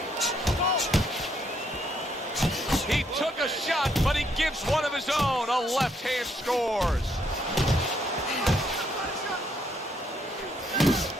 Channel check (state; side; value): normal; both; correlation 0.72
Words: He took a shot, but he gives one of his own. A left hand scores.